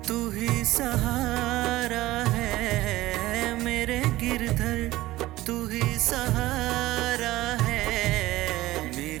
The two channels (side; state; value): left; quieter; 17.1 dB